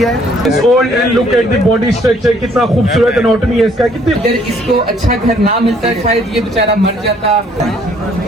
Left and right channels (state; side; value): normal; both; correlation 0.62